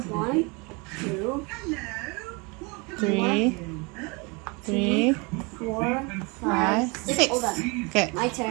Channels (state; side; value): quieter; left; 29.1 dB